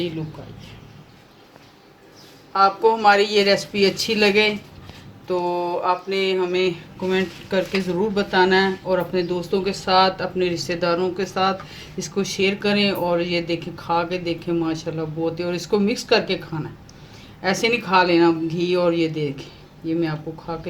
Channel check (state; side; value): identical; both; correlation 1.00